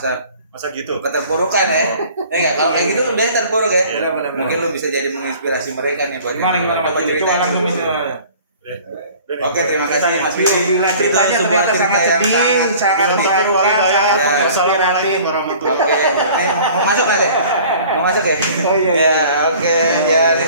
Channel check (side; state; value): both; inverted; correlation -0.48